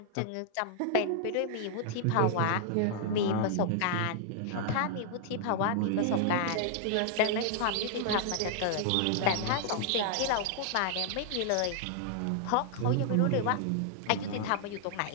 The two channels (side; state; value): both; different; correlation 0.00